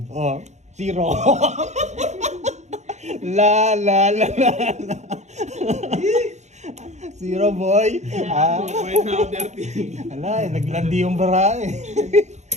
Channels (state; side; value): late; left; 0.33 ms